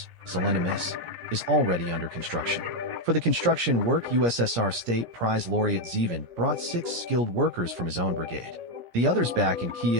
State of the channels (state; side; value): late; left; 17 ms